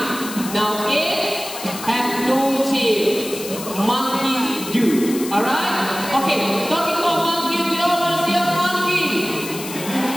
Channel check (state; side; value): noise; left; hiss, 10 dB below the sound